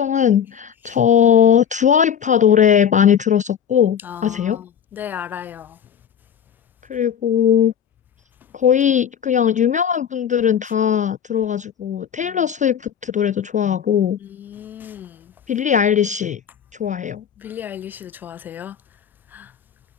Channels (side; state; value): right; quieter; 8.5 dB